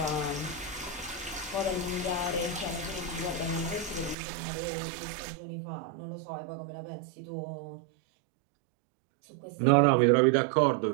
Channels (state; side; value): drops out; left; at 4.2 s